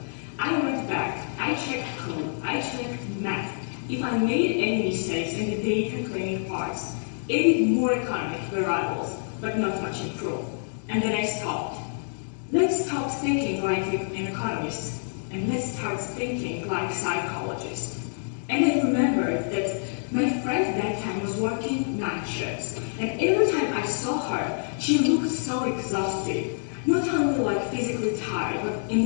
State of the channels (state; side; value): silent; right; digital silence